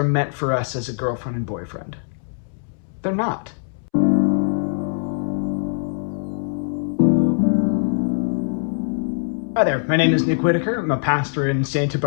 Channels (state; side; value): silent; right; 64 dB below the other